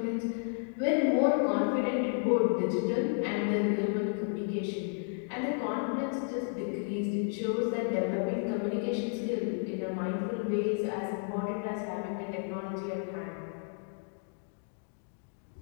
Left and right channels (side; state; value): right; silent; 56 dB below the other